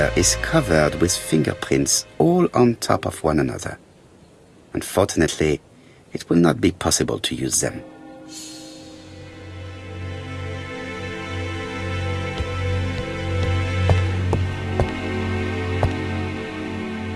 is covered with fingerprints all on top of one another. Unfortunately, it will not be possible to use them.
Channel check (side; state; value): both; identical; correlation 1.00